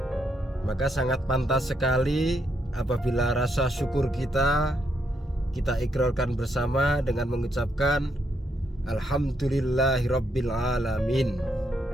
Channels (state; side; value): normal; both; correlation 0.77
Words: Maka sangat pantas sekali apabila rasa syukur kita ikrarkan bersama dengan mengucapkan Alhamdulillahirabbil alamin.